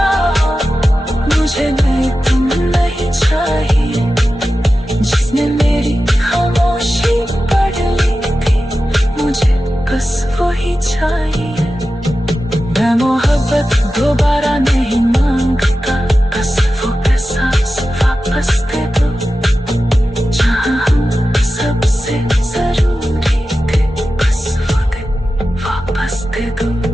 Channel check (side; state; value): both; normal; correlation 0.93